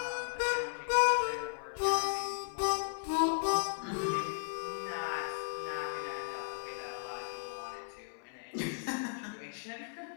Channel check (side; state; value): right; silent; 54 dB below the other